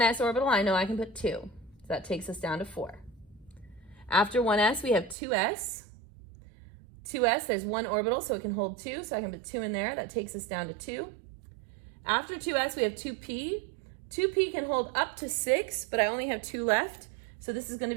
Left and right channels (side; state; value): left; drops out; at 5.2 s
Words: orbital, I know I can put 2. So that takes us down to 4. After 1s, we have 2s. 2s, there's 1 orbital, so it can hold 2. So I can put 2 in there. That takes us down to 2. After 2s, we have 2p. 2p can hold up to 6, but I only have 2 left. So this is going to